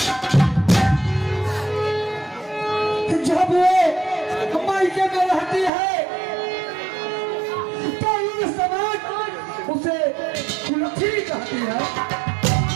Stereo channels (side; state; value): left; drops out; at 5.7 s